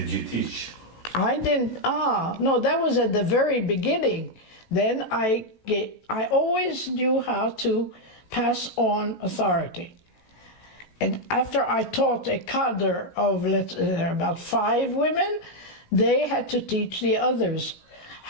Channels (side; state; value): right; late; 17 ms